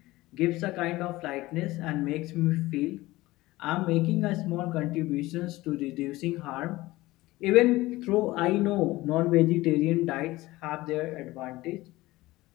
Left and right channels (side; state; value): right; quieter; 18.8 dB